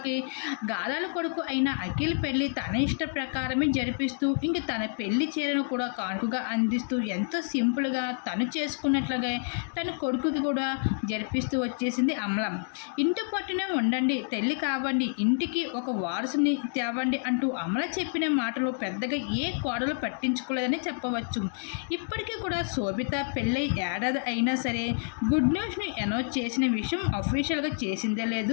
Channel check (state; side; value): silent; right; digital silence